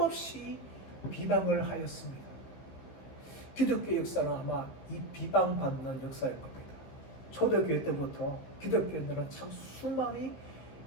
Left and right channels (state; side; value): late; right; 15 ms